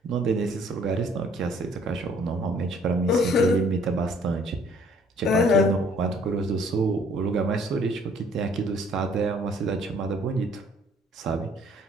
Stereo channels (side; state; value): both; normal; correlation 0.58